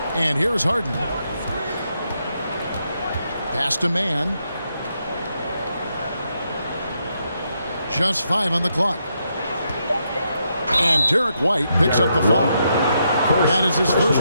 And here's Harden. Pass to man. Just 5 on the clock. And Derek White picks up the foul. That is his first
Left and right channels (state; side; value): inverted; both; correlation -0.80